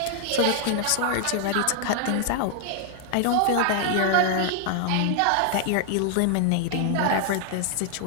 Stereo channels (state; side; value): different; both; correlation 0.00